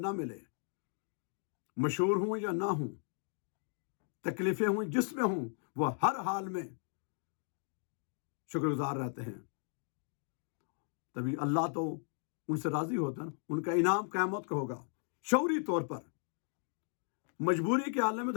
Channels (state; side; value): silent; right; 54 dB below the other